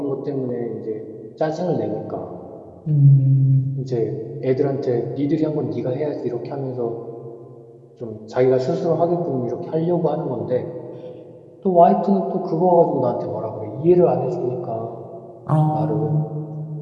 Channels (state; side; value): identical; both; correlation 1.00